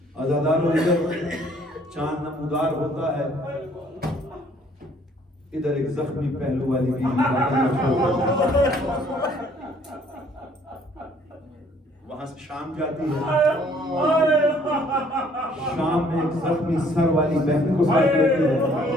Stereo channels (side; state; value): both; normal; correlation 0.60